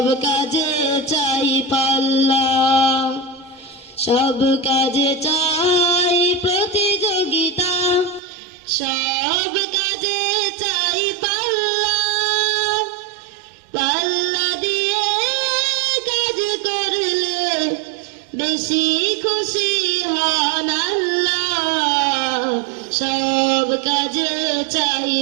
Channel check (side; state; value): left; drops out; at 8.2 s